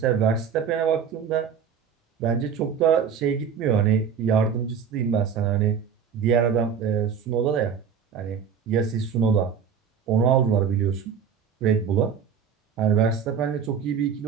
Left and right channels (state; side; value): quieter; left; 7.0 dB